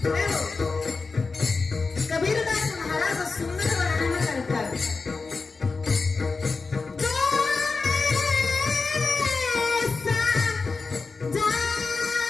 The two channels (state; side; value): quieter; right; 4.2 dB